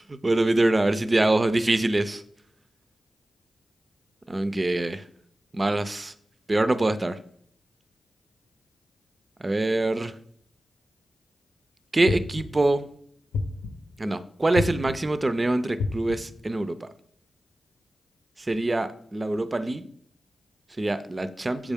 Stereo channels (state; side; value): normal; both; correlation 0.96